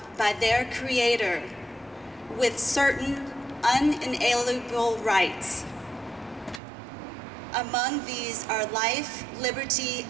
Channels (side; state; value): left; drops out; at 6.6 s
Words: by their Creator with certain unalienable rights. Among these are life, liberty,